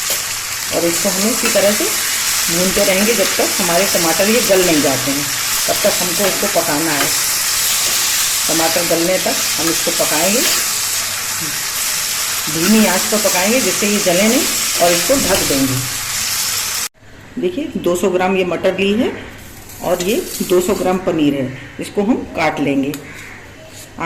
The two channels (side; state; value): both; identical; correlation 1.00